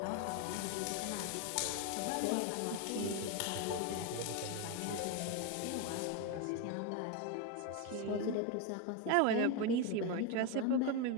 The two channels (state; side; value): different; both; correlation 0.02